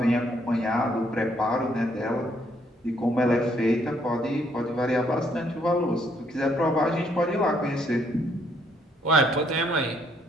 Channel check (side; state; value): both; normal; correlation 0.69